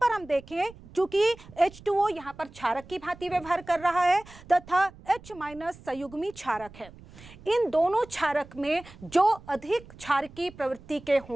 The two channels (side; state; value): right; noise; rumble, 20 dB below the sound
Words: हम देखें चूंकि H2O यहाँ पर क्षारक की भांति व्यवहार कर रहा है तथा H- संयुग्मी क्षारक है। इन दोनों क्षारक में जो अधिक क्षारकी प्रवृत्ति के